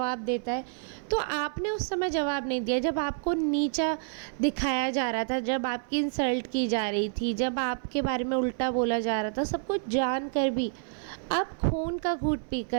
देता है। तो आपने उस समय जवाब नहीं दिया, जब आपको नीचा दिखाया जा रहा था, जब आपकी इंसल्ट की जा रही थी, जब आपके बारे में उल्टा बोला जा रहा था, सब कुछ जान कर भी आप खून का घूंट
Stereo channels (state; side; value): silent; left; 56 dB below the other